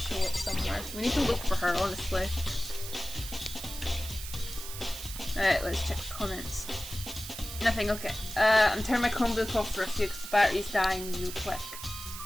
up somewhere. We need to look for her, honestly. Alright, let's check the comments. Nothing, okay. I'm turning my Chromebook off for a few because the battery's dying real quick.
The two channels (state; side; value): noise; right; hiss, 10 dB below the sound